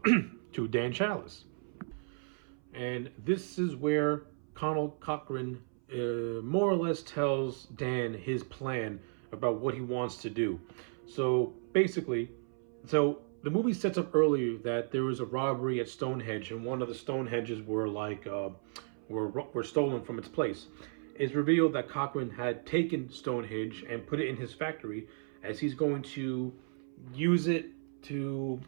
Dan Chalice. And this is where Cochrane more or less tells Dan his plan about what he wants to do. So basically, the movie sets up earlier that there was a robbery at Stonehenge, and one of the Stonehenges were were stolen from its place. It's revealed that Cochrane had taken Stonehenge and put it in his factory, as he's going to use it to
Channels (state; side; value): silent; left; 55 dB below the other